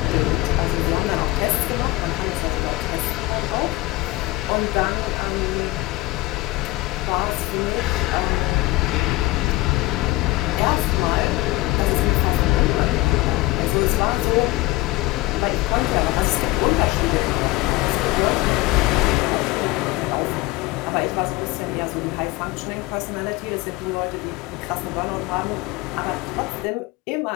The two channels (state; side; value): quieter; right; 19.8 dB